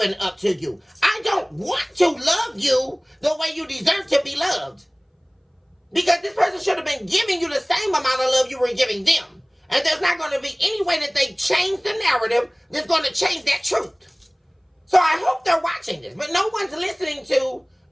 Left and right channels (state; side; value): identical; both; correlation 1.00